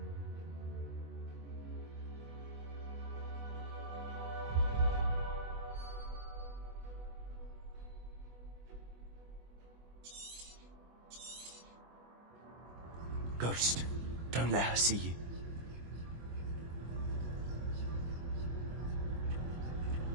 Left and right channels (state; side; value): late; left; 24 ms